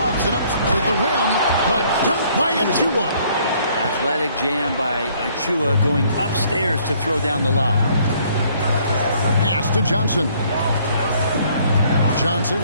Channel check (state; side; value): inverted; both; correlation -0.63